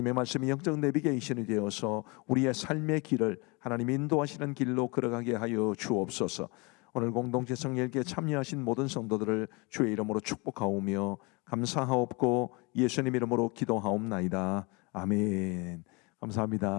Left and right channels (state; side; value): quieter; right; 28.4 dB